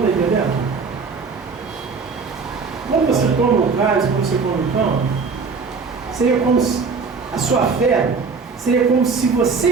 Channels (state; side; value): quieter; left; 4.9 dB